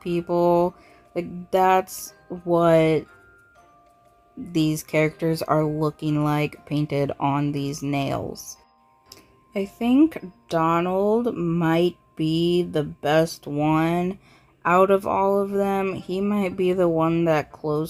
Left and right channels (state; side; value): identical; both; correlation 1.00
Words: people. Like that's what these characters are looking like painted on these nails. I think Donald might be the best one out of all of them. He might be the one that